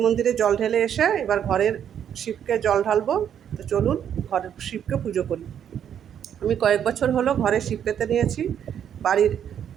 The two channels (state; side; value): quieter; left; 9.1 dB